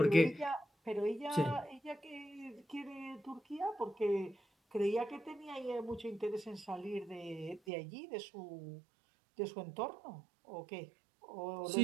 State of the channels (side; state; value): left; drops out; at 7.6 s